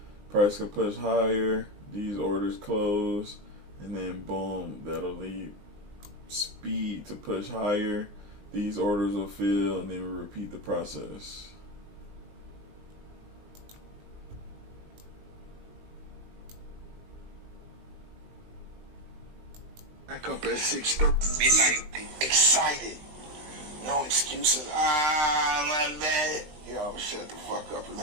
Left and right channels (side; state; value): left; late; 20 ms